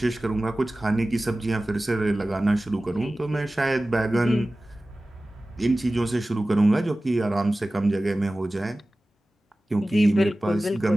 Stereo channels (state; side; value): normal; both; correlation 0.97